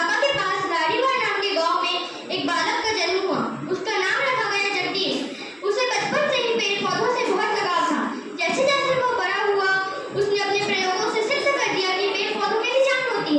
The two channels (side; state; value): both; identical; correlation 1.00